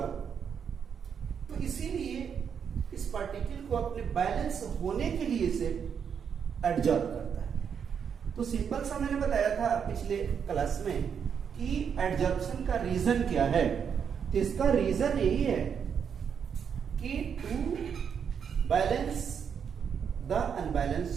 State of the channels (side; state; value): left; quieter; 7.3 dB